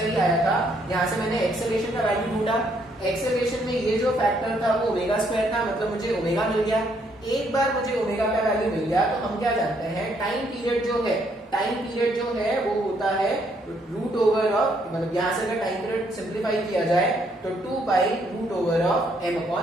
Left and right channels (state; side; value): normal; both; correlation 0.70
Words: ही आया था, यहाँ से मैंने एक्सेलरेशन का वैल्यू ढूंढा, एक्सेलरेशन में ये जो फैक्टर था वो ओमेगा स्क्वायर था, मतलब मुझे ओमेगा मिल गया। एक बार मुझे ओमेगा का वैल्यू मिल गया तो हम क्या जानते हैं, टाइम पीरियड जो है वो होता है रूट ओवर ऑफ, मतलब यहाँ से अगर टाइम पीरियड सिंप्लीफाई किया जाए तो 2 pi root over of m